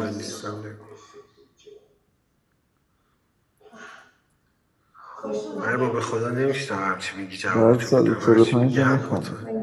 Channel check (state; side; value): identical; both; correlation 1.00